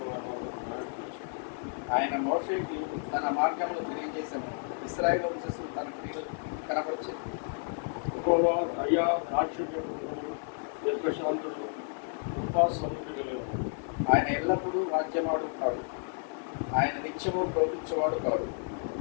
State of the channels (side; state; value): right; silent; 57 dB below the other